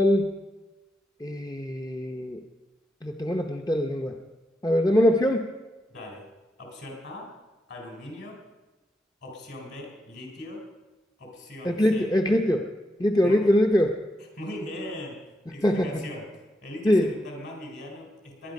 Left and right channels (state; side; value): normal; both; correlation 0.84